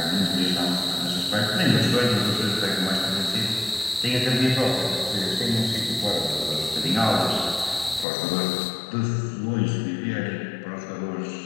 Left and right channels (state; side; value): drops out; right; at 8.1 s